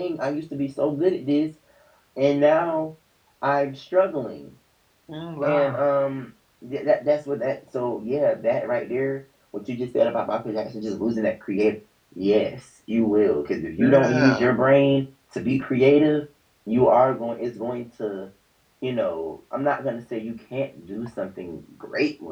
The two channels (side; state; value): both; identical; correlation 1.00